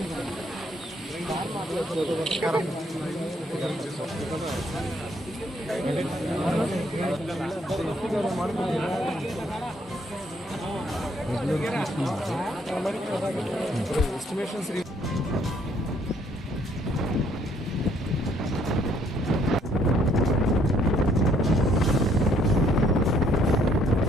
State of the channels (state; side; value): normal; both; correlation 0.67